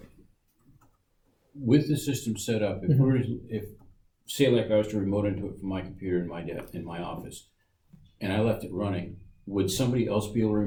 with the system set up, if say like I was to remote into it from my computer in my office, and I left it running, would somebody else be able to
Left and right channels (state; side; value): identical; both; correlation 1.00